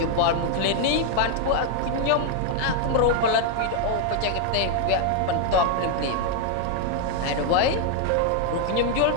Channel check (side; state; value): both; different; correlation 0.00